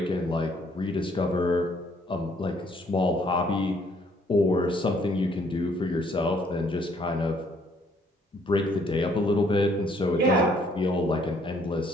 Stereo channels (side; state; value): both; normal; correlation 0.65